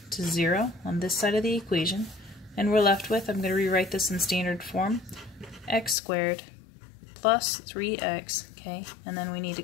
to 0 on this side of the equation. And we're left with, I'm going to rewrite this in standard form, x squared plus 3x, okay, and then we need to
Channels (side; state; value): right; drops out; at 6.0 s